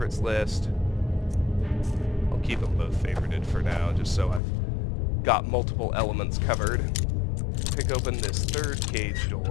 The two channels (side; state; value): right; drops out; at 4.4 s